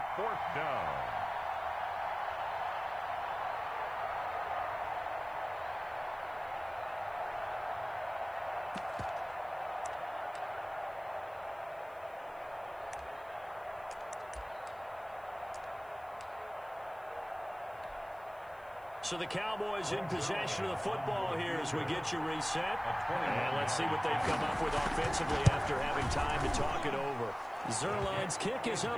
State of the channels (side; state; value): left; noise; hiss, 28 dB below the sound